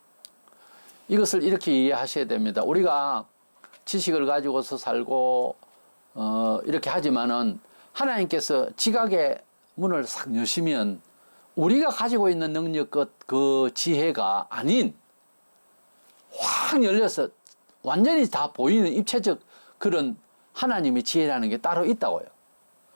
이것을 이렇게 이해하셔야 됩니다. 우리가 지식을 가지고서 살고 이렇게 하지만은 하나님께서 지각의 문을 싹 여시면 우리가 가지고 있는 능력 그 지혜가 아닌 확 열려서 완전히 다 보이는 입체적 그런 하나님의 지혜라는 게 따로 있다고요.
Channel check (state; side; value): inverted; both; correlation -1.00